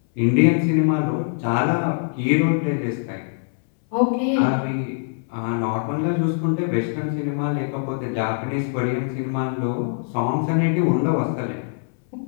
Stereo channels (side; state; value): right; silent; 62 dB below the other